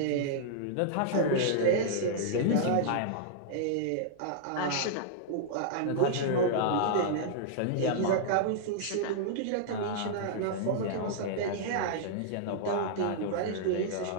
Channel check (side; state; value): both; different; correlation -0.02